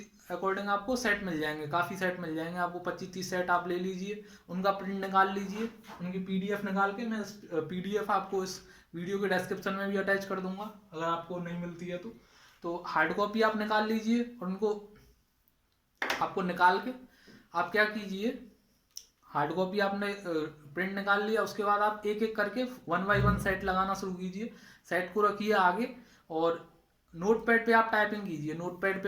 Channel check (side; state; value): both; identical; correlation 1.00